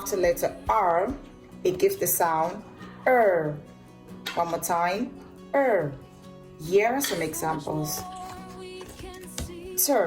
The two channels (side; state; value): both; identical; correlation 1.00